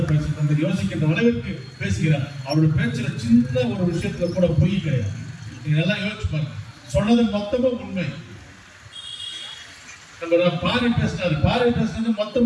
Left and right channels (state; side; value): identical; both; correlation 1.00